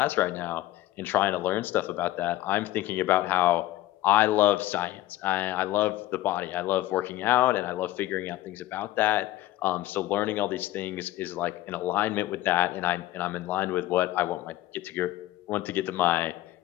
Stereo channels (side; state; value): right; quieter; 15.7 dB